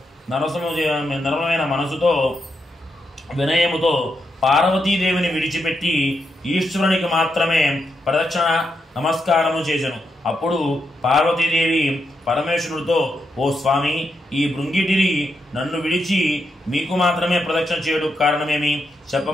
వినయముతో పార్వతీదేవిని విడిచిపెట్టి ఈశ్వరునికి మాత్రమే ప్రదక్షిణ నమస్కారము చేసెను. అప్పుడు పార్వతీదేవి పరమేశ్వరుడితో, ఓ స్వామి, ఈ భృంగిటిరి నన్ను విడిచి మీకు మాత్రమే ప్రదక్షిణ చేయడం కారణమేమి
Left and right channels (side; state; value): both; normal; correlation 0.83